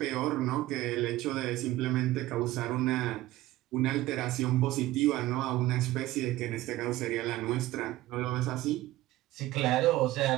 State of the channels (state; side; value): quieter; left; 16.4 dB